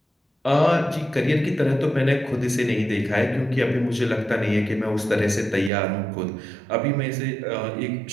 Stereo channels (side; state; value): left; drops out; at 5.7 s